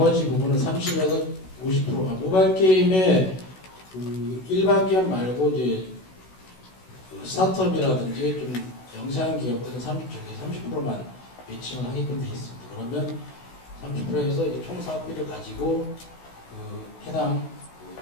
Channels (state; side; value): late; right; 16 ms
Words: 부분은 30에서 50%가 모바일 게임의 그 일반 기업 말고 이제 그 스타트업이라든지 좀 영세한 기업들은 30%만 매칭을 하게끔 되어 있습니다. 그러면 30%에서 총 사업비를 가지고 그 해당